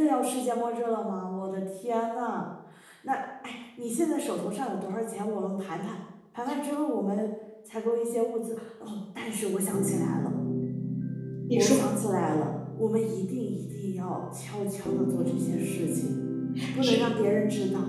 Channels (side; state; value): both; identical; correlation 1.00